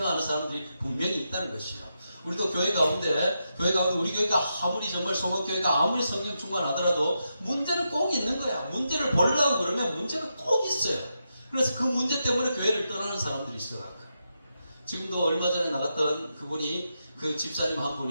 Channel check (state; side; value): inverted; both; correlation -0.85